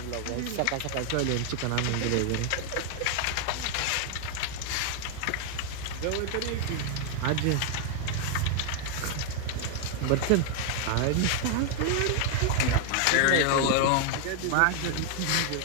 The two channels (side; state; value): both; different; correlation 0.00